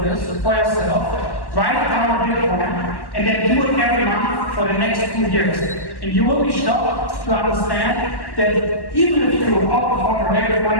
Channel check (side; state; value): right; late; 1.1 ms